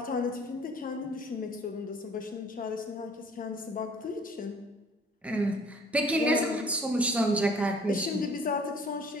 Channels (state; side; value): normal; both; correlation 0.54